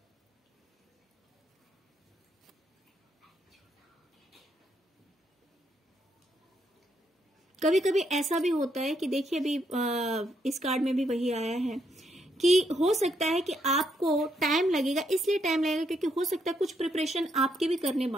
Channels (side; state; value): both; normal; correlation 0.76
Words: कभी कभी ऐसा भी होता है कि देखिए अभी इस कार्ड में भी वही आया है कि हो सकता है कि आपको टाइम लगेगा, इसलिए टाइम लगेगा क्योंकि हो सकता है कुछ प्रिपरेशन आपके भी करने